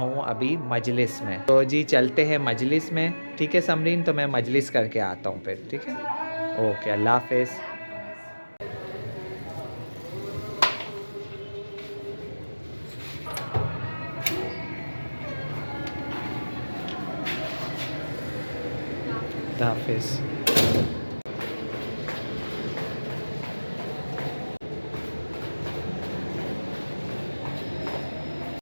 ابھی مجلس میں. تو جی چلتے ہیں مجلس میں. ٹھیک ہے سمرین، تو میں مجلس کر کے آتا ہوں پھر. ٹھیک ہے، اوکے، اللہ حافظ. اللہ حافظ.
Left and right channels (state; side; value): inverted; both; correlation -1.00